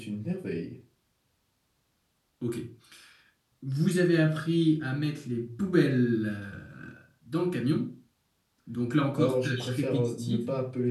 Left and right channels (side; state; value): both; identical; correlation 1.00